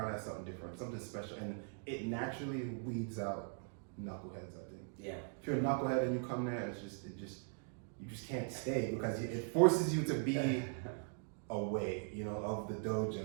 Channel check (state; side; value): silent; left; 51 dB below the other